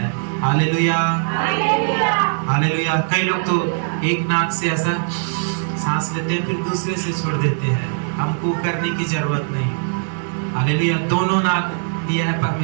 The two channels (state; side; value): silent; left; 58 dB below the other